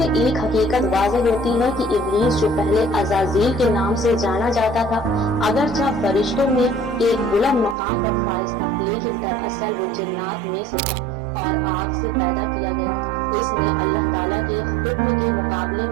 ایک حقیقت واضح ہوتی ہے کہ ابلیس جو پہلے عزازیل کے نام سے جانا جاتا تھا اگرچہ فرشتوں میں ایک بلند مقام پر فائز تھا، لیکن دراصل وہ جنات میں سے تھا اور آگ سے پیدا کیا گیا تھا۔ اس نے اللہ تعالیٰ کے حکم کے مقابلے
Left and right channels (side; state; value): left; drops out; at 7.8 s